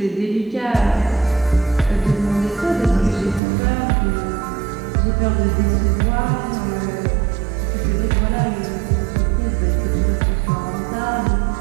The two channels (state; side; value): drops out; left; at 3.4 s